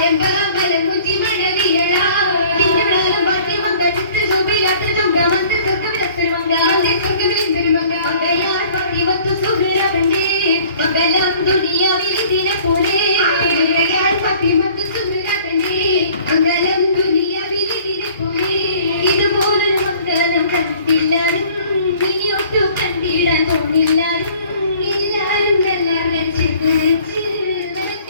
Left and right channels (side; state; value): both; inverted; correlation -0.53